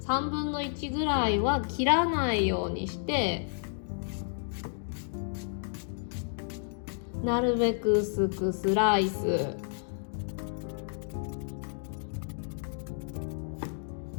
3分の1ぐらいは切らないようにして、なるべく薄くスライス。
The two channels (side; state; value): right; silent; digital silence